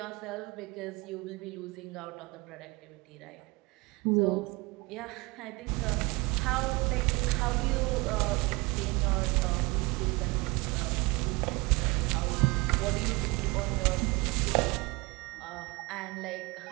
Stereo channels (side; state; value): left; quieter; 24.8 dB